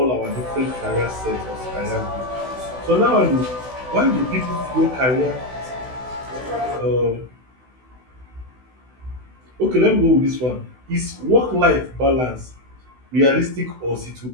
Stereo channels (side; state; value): left; late; 16 ms